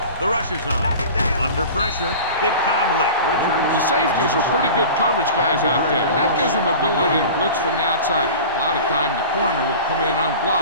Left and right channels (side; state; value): both; inverted; correlation -0.37